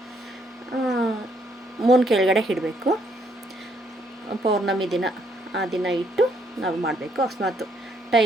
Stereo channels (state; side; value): normal; both; correlation 0.70